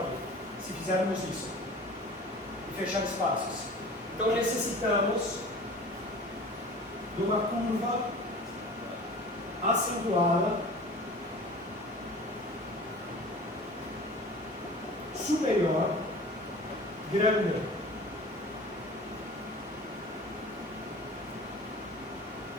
se fizermos isso e fechar espaços. Então necessitamos de uma curva acentuada superior grande.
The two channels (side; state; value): both; normal; correlation 0.41